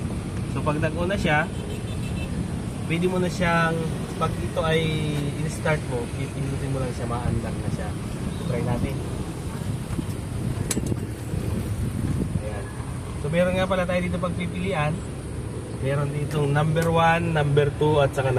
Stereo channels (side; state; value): both; identical; correlation 1.00